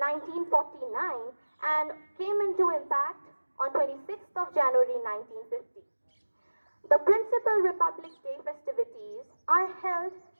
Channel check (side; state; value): both; inverted; correlation -1.00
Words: and came into impact on 26th of January 1950. The principal Republic Day festivities are held